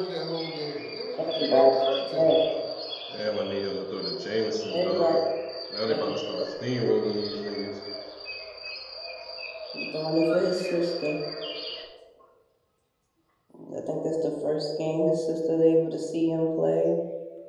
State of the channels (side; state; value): both; identical; correlation 1.00